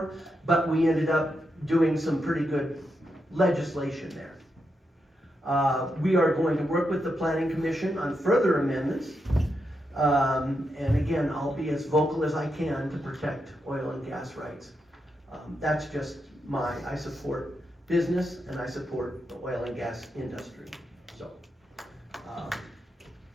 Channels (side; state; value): both; normal; correlation 0.84